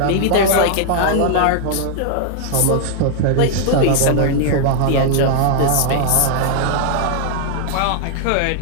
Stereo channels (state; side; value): different; both; correlation 0.00